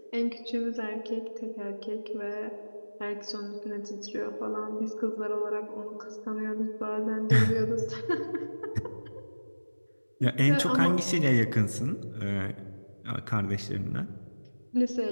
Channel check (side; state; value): both; inverted; correlation -1.00